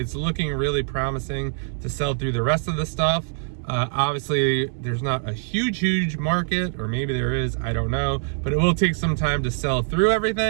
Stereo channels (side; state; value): left; silent; 63 dB below the other